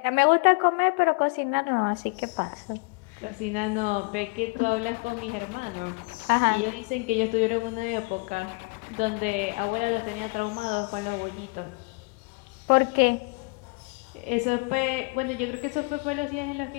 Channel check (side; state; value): right; quieter; 31.4 dB